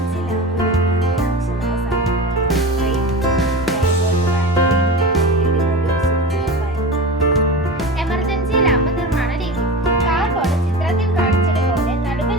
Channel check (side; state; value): both; normal; correlation 0.29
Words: എമർജൻസി ലാമ്പ് നിർമ്മാണ രീതി. കാർബോർഡ് ചിത്രത്തിൽ കാണിച്ചതുപോലെ നടുവിൽ